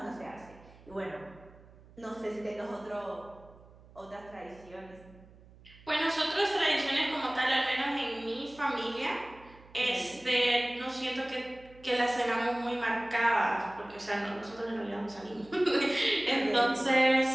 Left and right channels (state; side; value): noise; right; hum, 23 dB below the sound